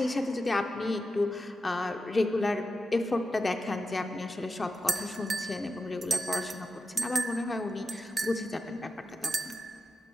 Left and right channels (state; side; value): normal; both; correlation 0.90